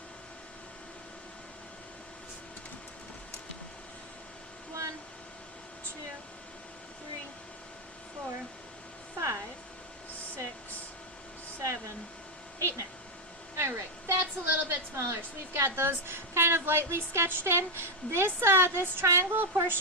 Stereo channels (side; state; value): both; normal; correlation 0.04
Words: 1, 2, 3, 4, 5, 6, 7, 8, 9. Alright, that's a little bit smaller. So we've got those kind of lightly sketched in. This triangle